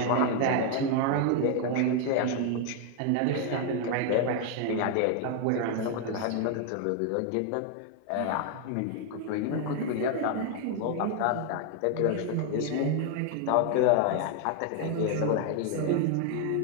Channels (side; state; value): both; different; correlation 0.00